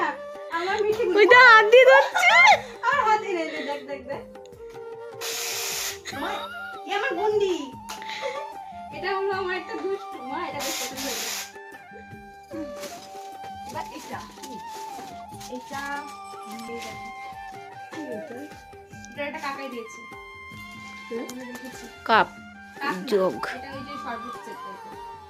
আমার মিঠি ওই তো হাত দিয়ে ধরছে। আর হাতে নেই দেখ দেখ দেখ মা এ আমার গুন্ডি এটা হলো আমার একটা দুষ্টু মা এটা বেশ পছন্দ হয়েছে বা এটা এটা এটা একটা কাকাই দিয়েছে কাপ কাক না, যোগ এটা ওই যে শরবত সেট টাইপের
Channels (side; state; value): both; identical; correlation 1.00